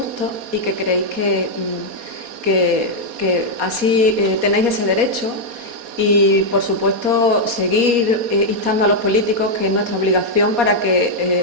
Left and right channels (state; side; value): late; left; 4.2 ms